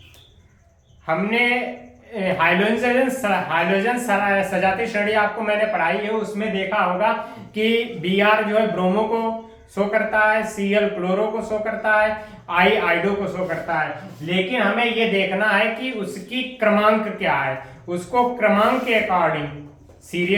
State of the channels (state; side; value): identical; both; correlation 1.00